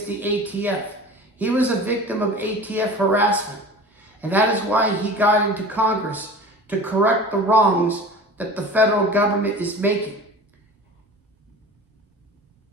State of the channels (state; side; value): normal; both; correlation 0.38